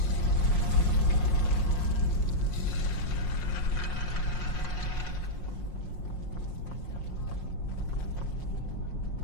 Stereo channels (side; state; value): right; late; 5.6 ms